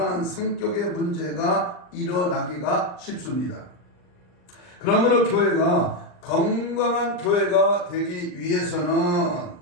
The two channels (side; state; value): right; late; 39 ms